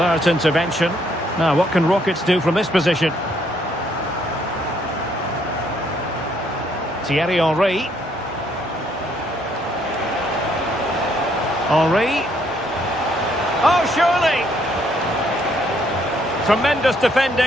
intervention. Now, what can Rockets do from this position? Thierry Henry. Henry. Oh, surely! Tremendous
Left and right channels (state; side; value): normal; both; correlation 0.69